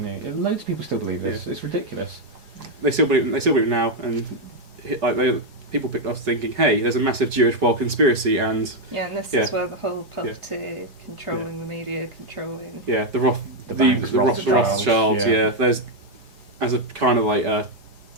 knew. Loads of people still believe this. It's ridiculous. They still believe it now, and people picked us thinking, hey, there's a massive Jewish world conspiracy, and Yeah, and this Yeah. is where the whole puppeteer, controlling the media, controlling. yeah, the banks, Rothschilds, yeah. yeah. There's as a kind of like a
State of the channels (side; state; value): left; late; 4.8 ms